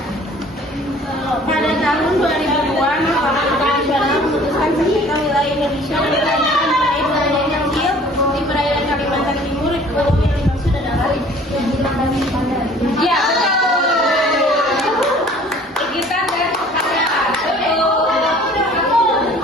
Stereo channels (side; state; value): both; normal; correlation 0.51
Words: Pada tahun 2002, Mahkamah Nasional memutuskan sengketa wilayah Indonesia mengenai wilayah yang kecil di perairan Kalimantan Timur. Pulau yang dimaksud adalah Ya betul. Kita dan pertanyaan.